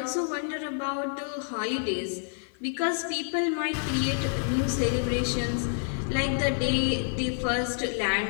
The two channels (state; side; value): silent; right; digital silence